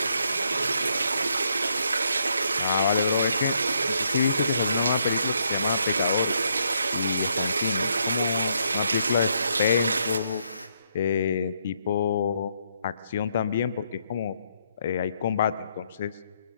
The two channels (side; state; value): both; inverted; correlation -0.74